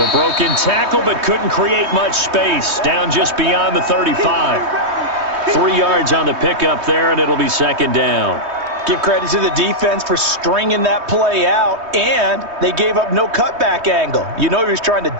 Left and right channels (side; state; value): left; late; 3.2 ms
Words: broken tackle, but couldn't create much space. Down just beyond the 35. 3 yards on the pickup there, and it'll be 2nd down. Give credit to the defense for stringing that play out, and they gave up no cutback angle. You know he was trying to